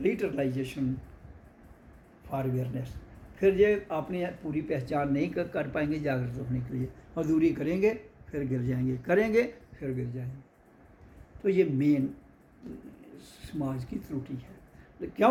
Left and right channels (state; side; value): identical; both; correlation 1.00